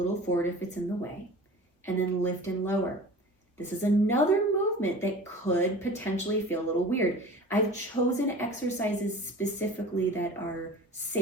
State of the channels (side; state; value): both; normal; correlation 0.39